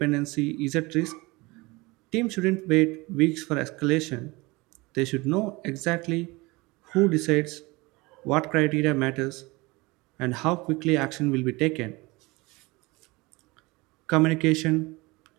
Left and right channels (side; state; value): left; quieter; 23.6 dB